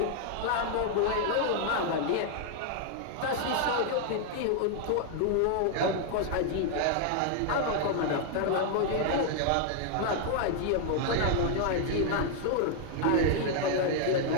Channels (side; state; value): both; different; correlation 0.00